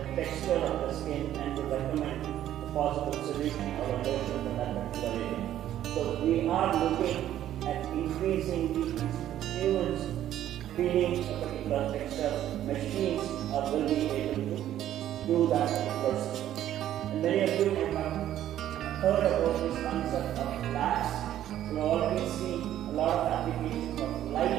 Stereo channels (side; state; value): left; quieter; 12.0 dB